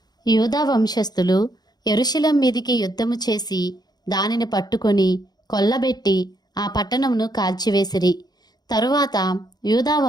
యూదా వంశస్థులు యెరూషలేము మీదికి యుద్ధము చేసి దానిని పట్టుకొని కొల్లబెట్టి ఆ పట్టణమును కాల్చివేసిరి. తరువాత యూదా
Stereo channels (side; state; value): right; late; 0.19 ms